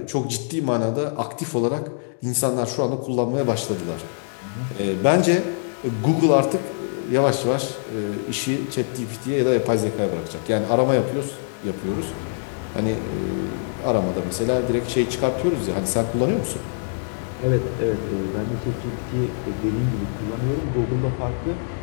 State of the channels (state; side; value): silent; right; digital silence